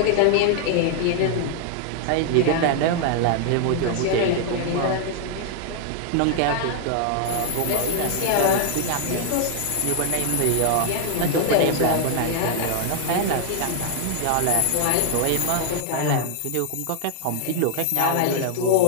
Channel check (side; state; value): both; different; correlation 0.00